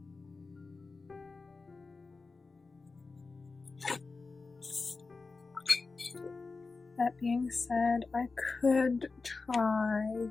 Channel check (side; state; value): right; quieter; 4.1 dB